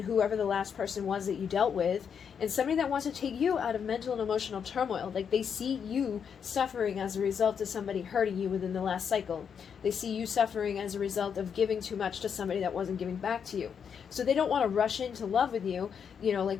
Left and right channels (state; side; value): quieter; right; 7.2 dB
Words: whoever the last person was that you dealt with, and somebody that wants to take you out of mental and emotional turmoil. Like they see you suffering as a result of somebody hurting you within the last cycle. They see you suffering as a result of giving too much to somebody that wasn't giving back to you. So they don't want to rush into love with you, you know,